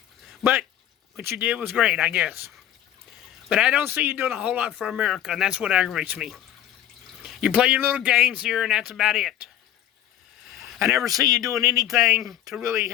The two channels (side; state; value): right; quieter; 11.7 dB